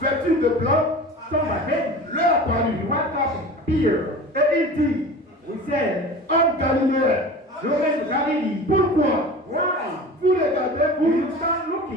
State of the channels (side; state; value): both; normal; correlation 0.36